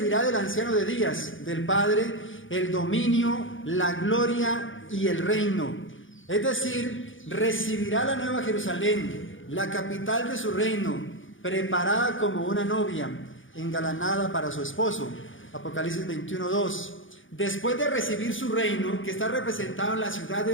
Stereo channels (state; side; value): late; right; 0.57 ms